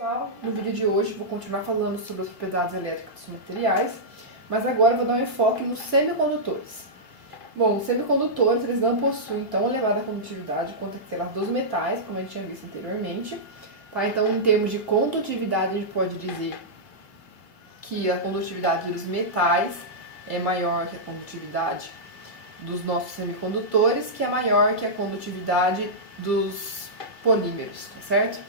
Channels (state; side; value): late; right; 2.2 ms